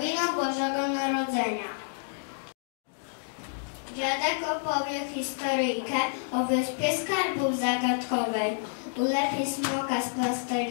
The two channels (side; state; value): right; silent; digital silence